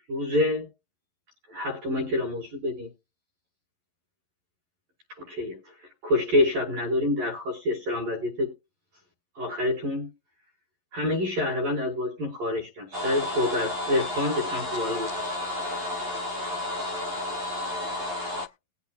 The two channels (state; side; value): late; left; 11 ms